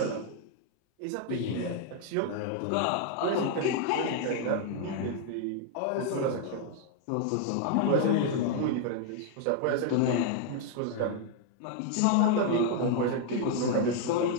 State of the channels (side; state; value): both; different; correlation 0.00